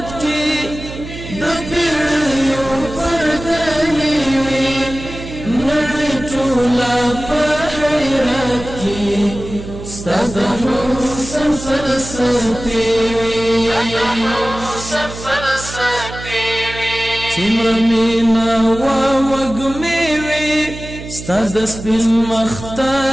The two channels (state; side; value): noise; right; hum, 11 dB below the sound